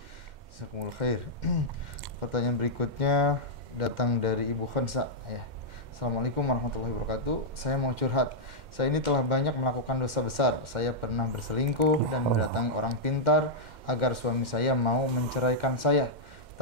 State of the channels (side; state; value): left; late; 2.1 ms